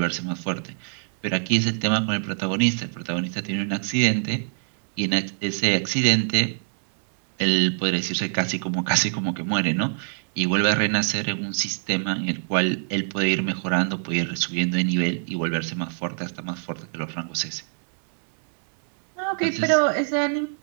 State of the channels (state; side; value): silent; left; 62 dB below the other